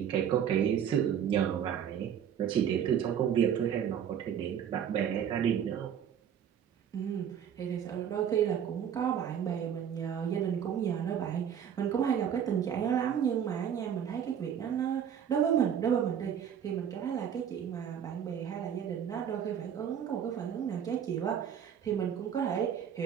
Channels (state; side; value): quieter; left; 8.7 dB